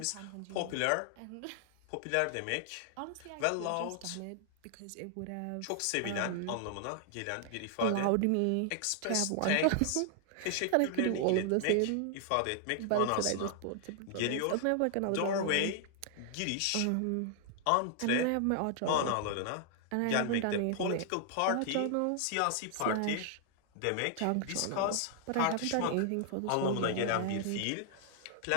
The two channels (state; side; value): different; both; correlation 0.00